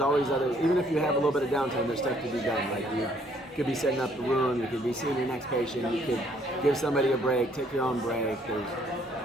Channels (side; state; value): both; normal; correlation 0.65